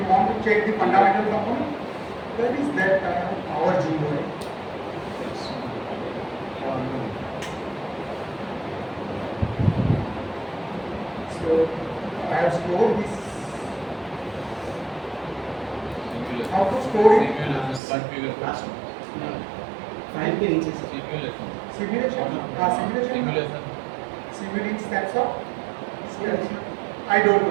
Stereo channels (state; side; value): drops out; left; at 17.8 s